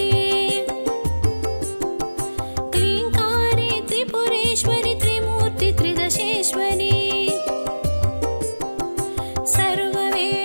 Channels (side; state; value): both; inverted; correlation -1.00